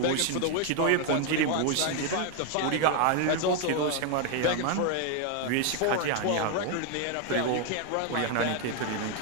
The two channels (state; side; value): different; both; correlation 0.01